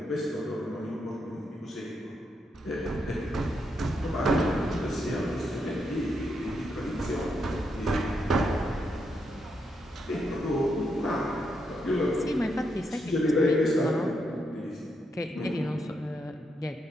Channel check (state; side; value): normal; both; correlation 0.80